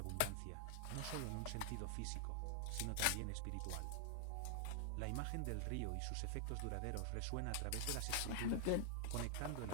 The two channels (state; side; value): different; both; correlation -0.01